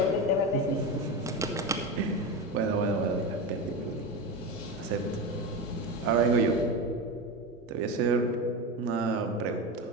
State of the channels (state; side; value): normal; both; correlation 0.20